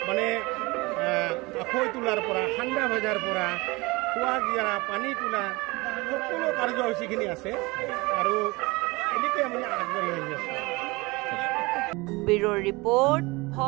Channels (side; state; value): left; quieter; 23.8 dB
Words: মানে আখৈ তোলাৰ পৰা ঠাণ্ডা ভজাৰ পৰা খোৱা গিয়াৰা পানী তোলা সকলো কাৰ্যসূচীখিনি আছে আৰু এনেকৈ আমি আগবাঢ়ি আহি আছোঁ ব্যুৰ ৰিপৰ্ট